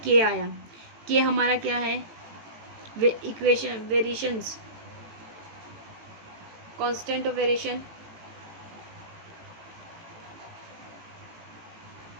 के आया। के हमारा क्या है, equation variations, constant of variation.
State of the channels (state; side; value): late; left; 18 ms